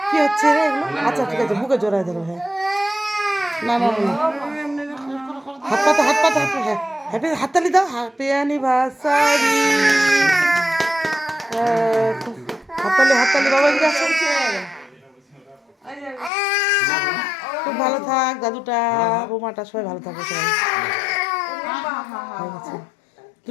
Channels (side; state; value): right; drops out; at 16.3 s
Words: কি হচ্ছে রে এগুলো? আচ্ছা ঠিক আছে বুকে জোড়ায় ধরো। হ্যাঁ না হাত পাতো হ্যাঁ হ্যাপি হাততালি দাও হ্যাপি অ্যানিভার্সারি হাততালি বাবা এদিকে আসো। খুব ভালো থাক দাদুটা বৌমাটা সবাই ভালো থাকবে সবাই।